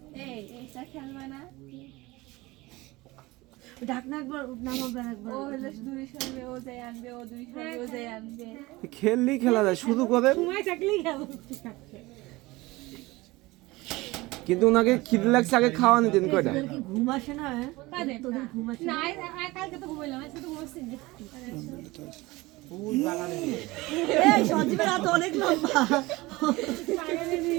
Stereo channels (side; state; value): left; quieter; 21.0 dB